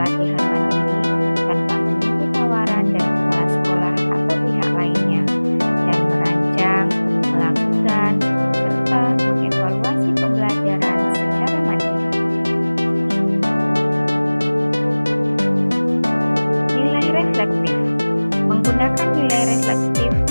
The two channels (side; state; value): both; inverted; correlation -1.00